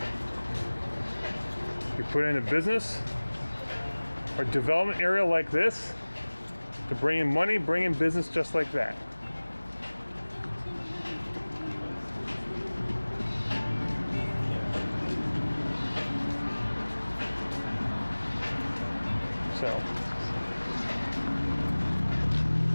you put in a business or development area like this to bring in money, bring in business just like that. So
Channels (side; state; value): both; inverted; correlation -1.00